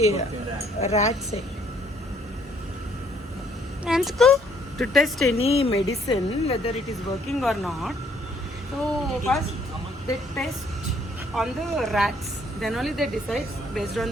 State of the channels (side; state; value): both; normal; correlation 0.65